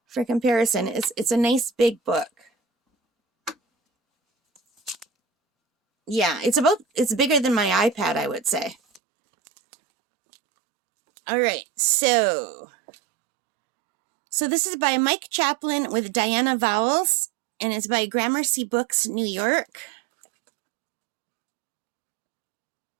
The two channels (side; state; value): left; drops out; at 9.0 s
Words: for comparison. It's a nice big book. Yeah, it's bigger than my iPad, I would say. All right, so this is by Mike Chaplin with Diana Vowles, and it's by Gramercy Books, New York.